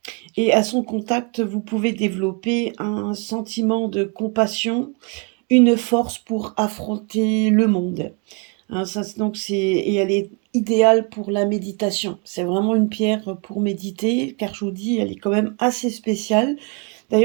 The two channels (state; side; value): quieter; left; 32.9 dB